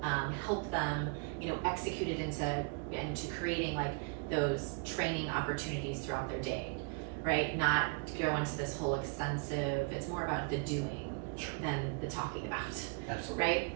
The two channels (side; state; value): left; quieter; 34.6 dB